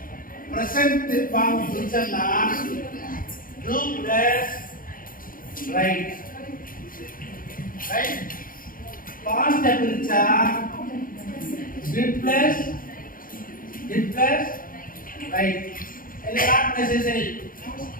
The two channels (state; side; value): late; right; 0.41 ms